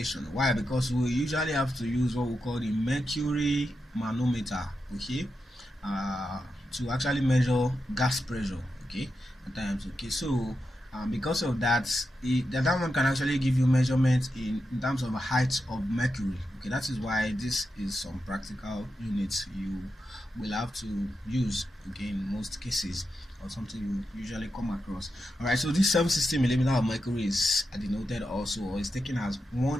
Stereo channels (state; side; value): normal; both; correlation 0.88